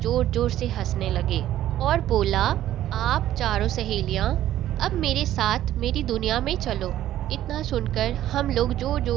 जोर से हंसने लगे और बोला आप चारों सहेलियां अब मेरे साथ मेरी दुनिया में चलो। इतना सुनकर हम लोग जोर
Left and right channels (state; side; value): quieter; left; 12.9 dB